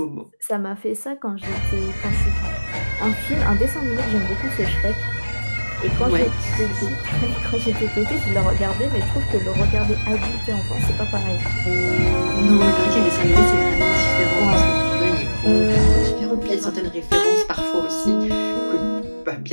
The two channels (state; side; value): inverted; both; correlation -1.00